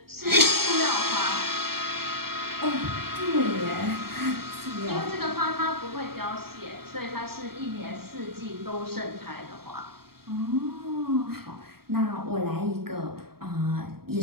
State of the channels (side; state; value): left; late; 0.95 ms